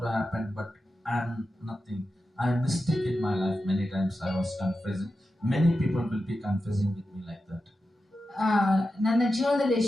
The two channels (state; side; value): normal; both; correlation 0.91